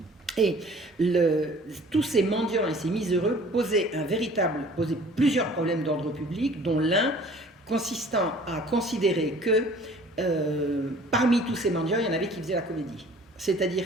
Et tous ces mendiants et ces miséreux posaient plusieurs problèmes d'ordre public, dont l'un consistant à considérer que parmi tous ces mendiants, il y en avait qui faisaient la comédie.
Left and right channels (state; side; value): normal; both; correlation 0.50